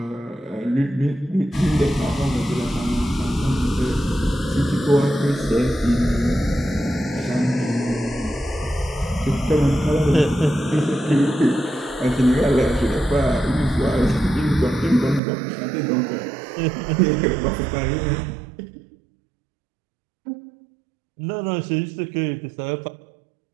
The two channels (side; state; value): left; drops out; at 15.2 s